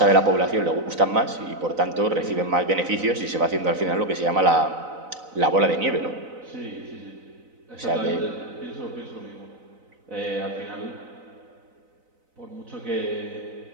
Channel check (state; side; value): late; left; 4.0 ms